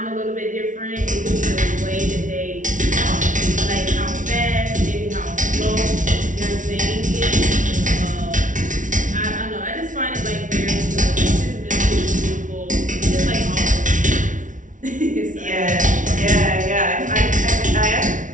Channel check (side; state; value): left; late; 0.37 ms